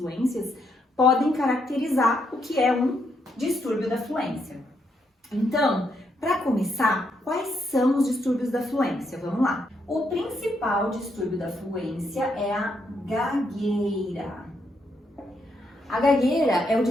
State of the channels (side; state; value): both; normal; correlation 0.77